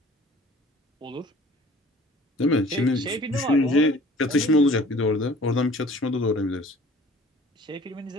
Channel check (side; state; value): both; normal; correlation 0.50